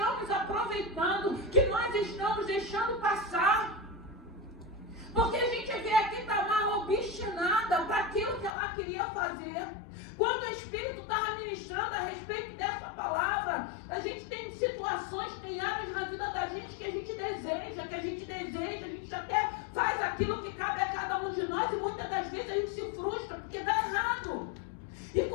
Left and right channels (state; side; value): drops out; right; at 8.5 s